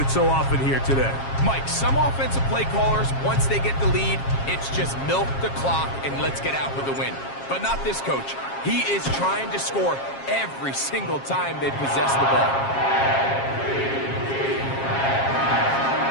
so often here today. Mike, some offensive play callers, once they get the lead, it's just milk the clock and let's get out with a win. But not this coach. He is trying to score every single time they possess the ball.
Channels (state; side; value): late; right; 7.4 ms